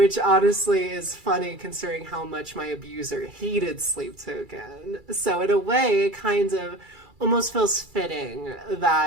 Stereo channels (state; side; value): late; left; 2.3 ms